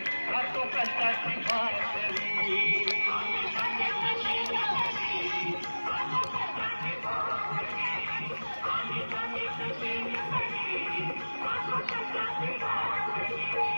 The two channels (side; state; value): both; inverted; correlation -1.00